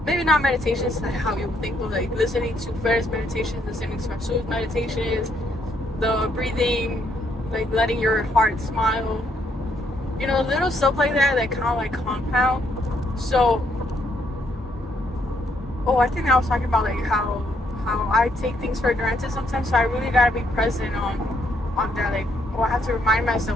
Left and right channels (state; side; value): normal; both; correlation 0.72